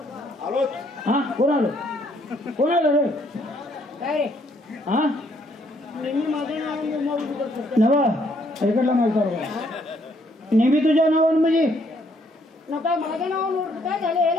हा कोण आलं कोण आलं रे काय हा नवा इकडला माहिती नेहमी तुझ्या नावानं म्हणजे नका माझ्या नावानं काय झालं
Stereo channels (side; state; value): both; normal; correlation 0.68